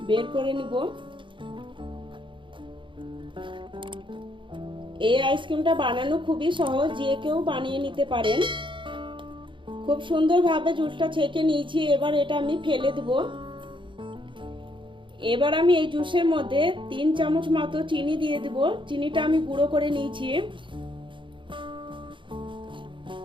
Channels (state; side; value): late; left; 0.24 ms